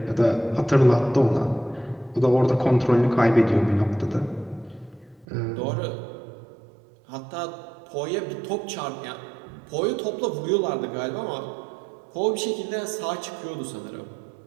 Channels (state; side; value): drops out; left; at 5.2 s